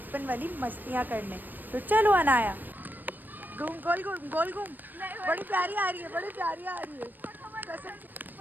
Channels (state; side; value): late; left; 0.090 ms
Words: वाली मस्तियाँ करने। तो चलो अनाया, घूम गोल घूम गोल घूम। बड़ी प्यारी आ रही है, बड़ी प्यारी आ रही है।